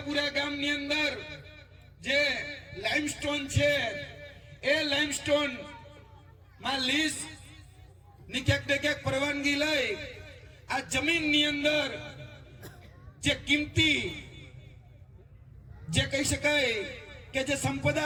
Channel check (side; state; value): both; identical; correlation 1.00